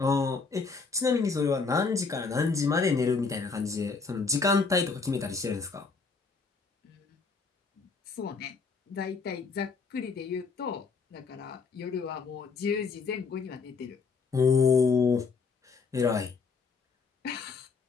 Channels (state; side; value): quieter; right; 4.7 dB